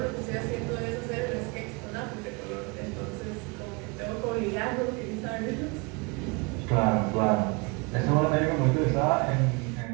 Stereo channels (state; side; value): quieter; left; 29.1 dB